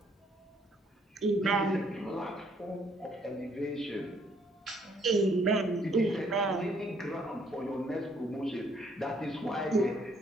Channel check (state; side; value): normal; both; correlation 0.66